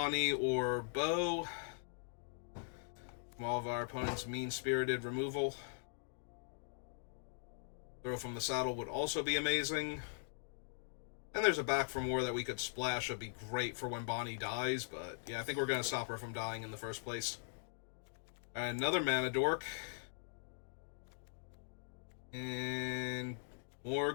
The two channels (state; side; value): silent; right; digital silence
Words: or Bo from all of our opponent's mean-spirited removal. Throw from the Saddle would also be amazing. And there's a Back for More that we could splash. That'd be great for when Bonnie dies, but yeah, I think we're going to stop her from dying in the first place. Another Mana Dork. And more